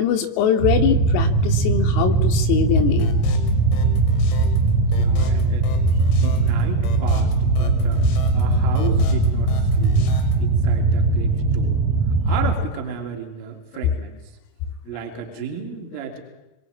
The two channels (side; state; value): right; late; 28 ms